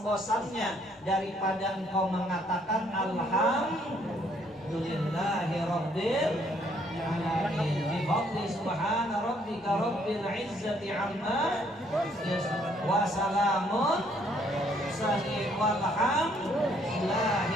daripada engkau mengatakan alhamdulillahi rabbil alamin bi fadli subhana rabbika rabbil izzati amma wa salamun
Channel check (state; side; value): normal; both; correlation 0.66